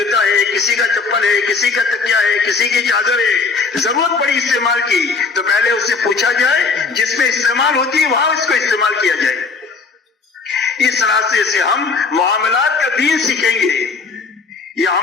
ہے، کسی کا چپل ہے، کسی کا تکیا ہے، کسی کی چادر ہے، ضرورت پڑی استعمال کی تو پہلے اس سے پوچھا جائے، جس میں استعمال ہوتی ہے وہاں اس کو استعمال کیا جائے۔ اس راستے سے ہم معاملات کا دین سیکھیں گے۔ یہ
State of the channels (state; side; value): quieter; right; 4.5 dB